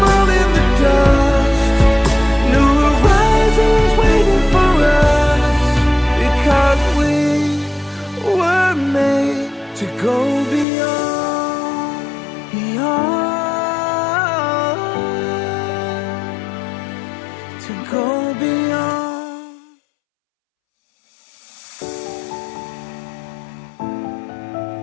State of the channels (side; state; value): right; drops out; at 10.7 s